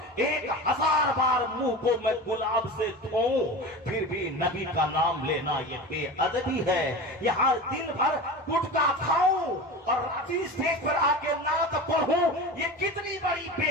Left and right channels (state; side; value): normal; both; correlation 0.30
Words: 1000 بار منہ کو میں گلاب سے دھوں, پھر بھی نبی کا نام لینا یہ بے ادبی ہے. یہاں دن بھر گٹکا کھاؤں اور اسٹیج پر آ کے نعت پڑھوں, یہ کتنی بڑی بے